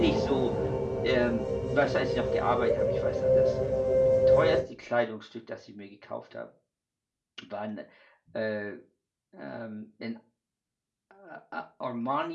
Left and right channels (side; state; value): both; identical; correlation 1.00